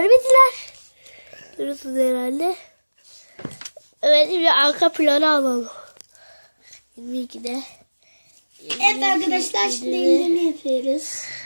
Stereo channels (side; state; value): both; inverted; correlation -1.00